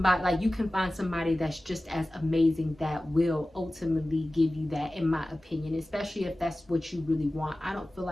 like you can find somebody that's just as amazing that will ultimately give you that, in my opinion, especially if that's what you really want. I don't feel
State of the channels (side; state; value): both; normal; correlation 0.96